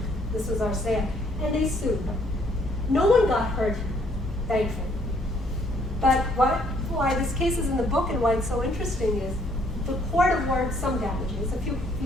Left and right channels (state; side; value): normal; both; correlation 0.66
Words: this was our sale. And they sued. No one got hurt, thankfully. But why this case is in the book and why it's so interesting is the court awards some damages, a few